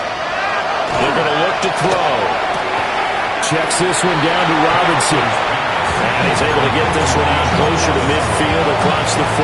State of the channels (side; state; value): both; identical; correlation 1.00